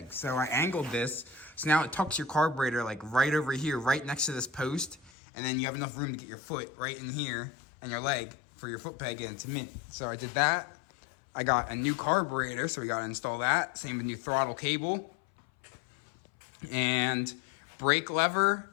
So I angled this, so now it tucks your carburetor like right over here, right next to this post, and then you have enough room to get your foot right in here and your leg for your foot peg into mint. So I did that. I got a new carburetor, so we gotta install that. Same with new throttle cable. And brake lever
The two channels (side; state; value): right; drops out; at 5.1 s